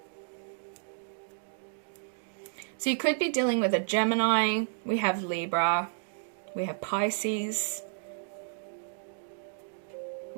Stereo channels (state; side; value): silent; left; digital silence